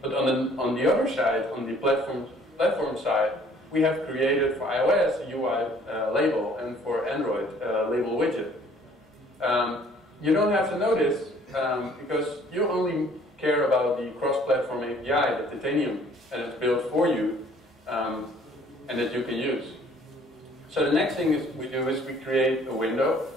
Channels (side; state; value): both; normal; correlation 0.57